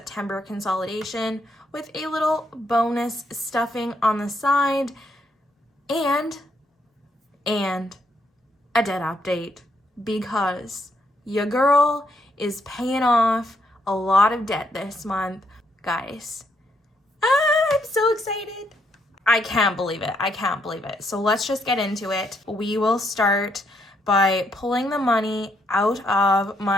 consolidation with a little bonus stuffing on the side and a debt update, because your girl is paying off a lot of debt this month, guys. I'm so excited. I can't believe it. So let's just get into it. We will start by pulling the money out of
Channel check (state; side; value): normal; both; correlation 0.75